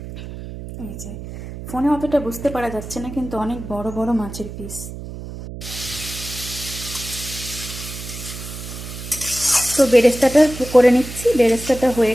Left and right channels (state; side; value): noise; right; hum, 10 dB below the sound